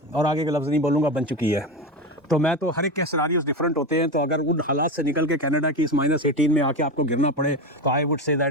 और आगे के लफ्ज़ नहीं बोलूँगा, बन चुकी है। तो मैं तो हर एक के सिनारियोज डिफरेंट होते हैं, तो अगर उन हालात से निकल के कनाडा की इस -18 में आके आपको गिरना पड़े तो I would say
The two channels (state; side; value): normal; both; correlation 0.20